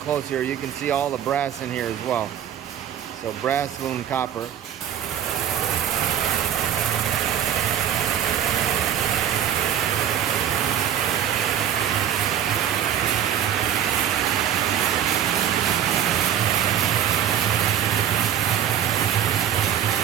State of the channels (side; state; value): left; quieter; 9.8 dB